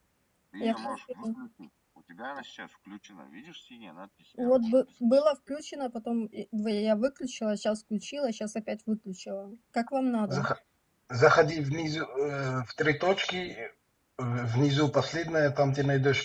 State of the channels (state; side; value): identical; both; correlation 1.00